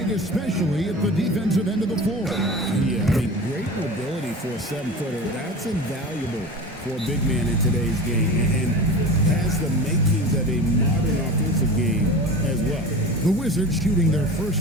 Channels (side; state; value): both; normal; correlation 0.33